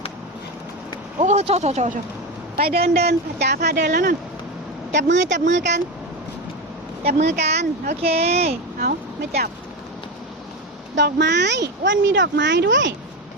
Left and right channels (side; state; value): both; normal; correlation 0.17